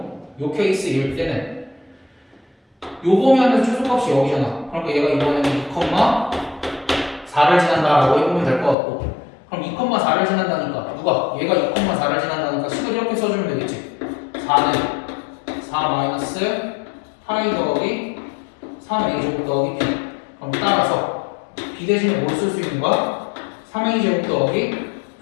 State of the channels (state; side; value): drops out; right; at 8.8 s